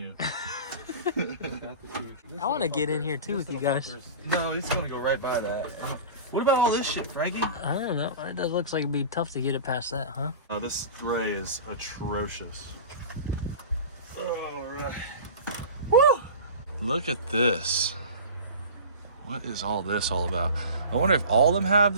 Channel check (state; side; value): inverted; both; correlation -0.34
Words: I want to get in here too with you guys. No, he's going to go right by that. What about all this shit, Frankie? I don't know. It does looks like it'd be tough to get it past that, huh? This gray is atrocious. All right. Woo! Look at this. What is all this all about? I wonder if all of them have